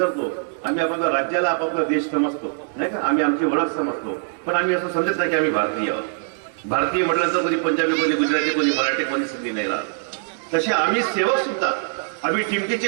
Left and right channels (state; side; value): silent; left; digital silence